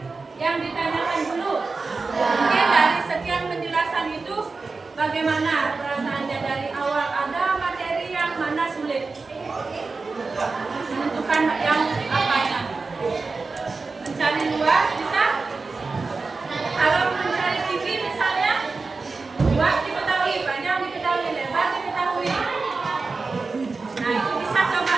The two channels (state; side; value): quieter; left; 4.1 dB